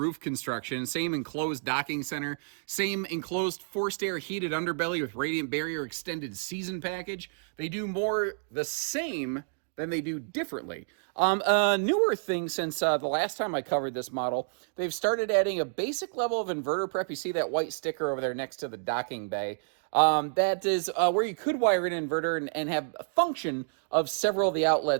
construction, same enclosed docking center, same enclosed forced air heated underbelly with radiant barrier extended season package. They do more the same than they do differently. A newer thing since the last time I covered this model, they've started adding a basic level of inverter prep. You see that white sticker over there next to the docking bay. That is where you could wire in an inverter and have a function of several of the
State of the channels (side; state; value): left; silent; digital silence